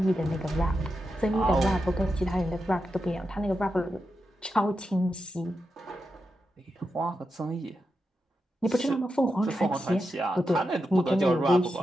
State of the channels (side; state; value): both; normal; correlation 0.88